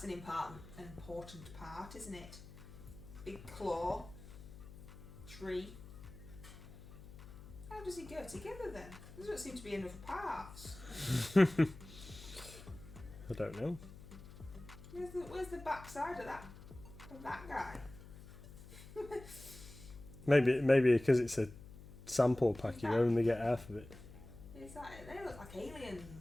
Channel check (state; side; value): noise; left; hum, 16 dB below the sound